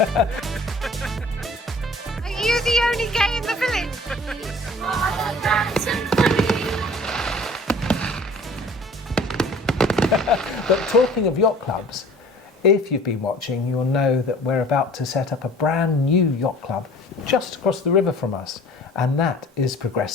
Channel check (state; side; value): normal; both; correlation 0.48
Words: you the only gay in the village? Oh, that's so funny. But talking of yacht clubs, if you've been watching, you'll know that we're about to set up a brand new yacht club just across the river from us, and that is